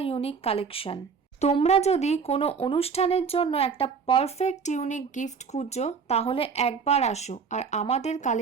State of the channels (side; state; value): left; quieter; 5.8 dB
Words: ইউনিক কালেকশন। তোমরা যদি কোনো অনুষ্ঠানের জন্য একটা পারফেক্ট ইউনিক গিফট খুঁজছো, তাহলে একবার আসো আর আমাদের